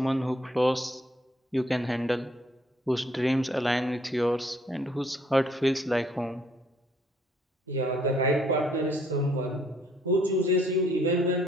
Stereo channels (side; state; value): both; normal; correlation 0.64